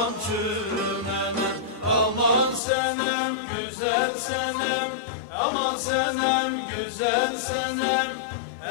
çürümenem. Aman senem güzel senem, aman senem güzel senem.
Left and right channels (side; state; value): right; drops out; at 2.6 s